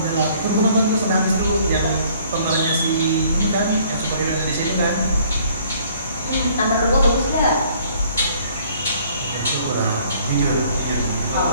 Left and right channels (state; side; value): inverted; both; correlation -0.59